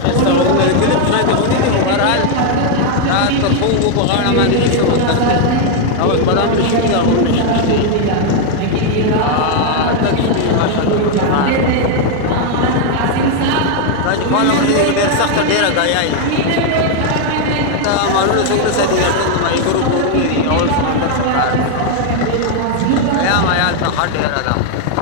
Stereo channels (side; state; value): both; different; correlation 0.01